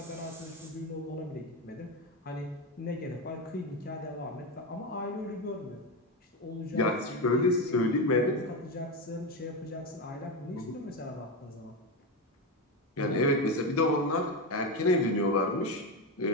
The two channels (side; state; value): both; normal; correlation 0.14